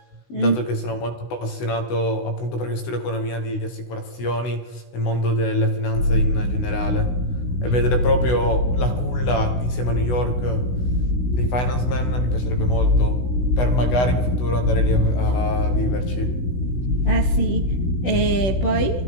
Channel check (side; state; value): right; late; 16 ms